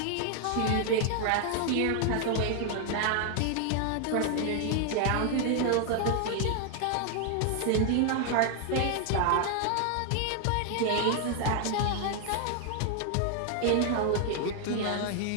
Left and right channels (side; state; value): both; different; correlation 0.00